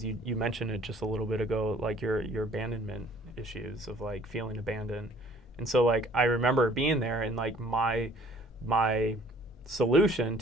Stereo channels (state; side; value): normal; both; correlation 0.56